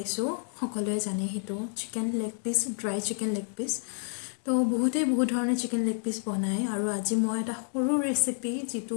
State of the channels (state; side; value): silent; right; 56 dB below the other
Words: সকলোৱে জানে সেইটো chicken leg piece, dry chicken leg piece. তো বহুতেই বহুত ধৰণৰ চিকেন লেগ পিচ বনায় আৰু আজি মই এটা সৰু ৰেচিপি